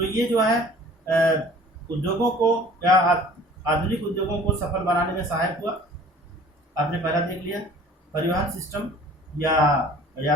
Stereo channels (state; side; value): normal; both; correlation 0.49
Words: ये जो है उद्योगों को या आधुनिक उद्योगों को सफल बनाने में सहायक हुआ। आपने पहला देख लिया परिवहन सिस्टम या